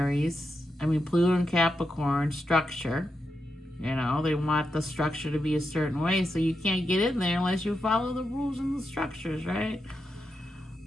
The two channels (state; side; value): normal; both; correlation 0.86